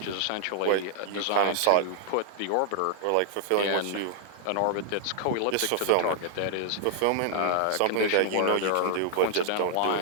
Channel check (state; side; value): different; both; correlation -0.01